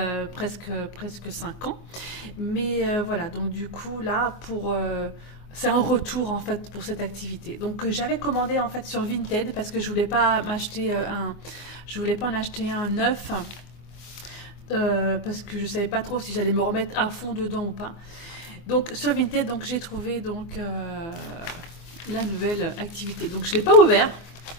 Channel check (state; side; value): late; right; 24 ms